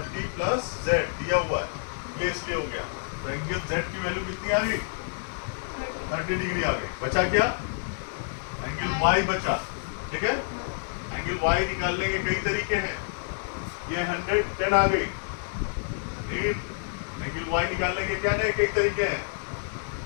प्लस Z दिया हुआ है, ये इसलिए हो गया। तो एंगल Z की वैल्यू कितनी आ गई? 30 डिग्री आ गई। बचा क्या? एंगल Y बचा, ठीक है? एंगल Y निकालने के कई तरीके हैं। ये 110 आ गई। एंगल Y निकालने के क्या नहीं कई तरीके हैं,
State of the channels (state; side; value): silent; right; digital silence